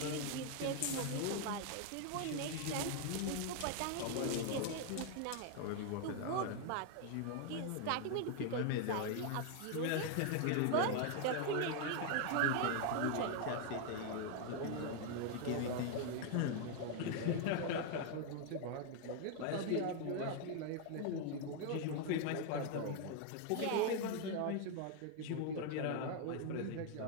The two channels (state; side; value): different; both; correlation 0.00